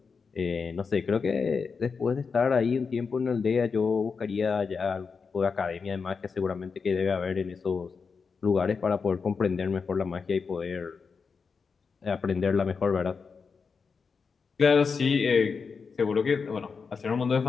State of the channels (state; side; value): quieter; right; 5.3 dB